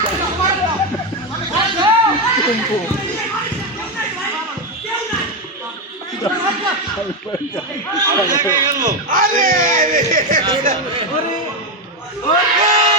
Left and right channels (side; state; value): both; normal; correlation 0.09